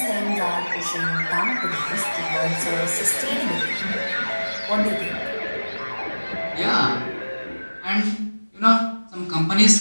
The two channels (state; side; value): inverted; both; correlation -1.00